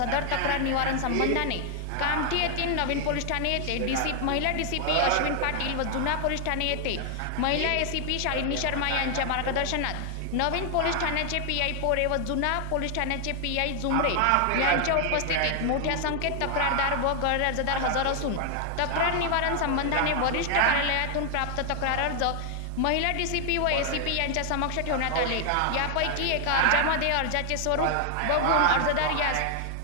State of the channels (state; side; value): different; both; correlation 0.00